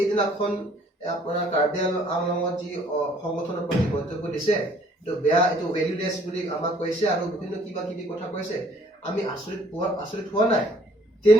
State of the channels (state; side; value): normal; both; correlation 0.59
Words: আপোনাৰ কাৰ্বি আংলঙত যি সংগঠনৰ প্ৰতি মন্তব্য দিছে এইটো বেয়া এইটো ভেলুলেছ বুলি আমাক কৈছে আৰু বিভিন্ন কিবা কিবি কথা কৈছে আমি আচৰিত হোৱা নাই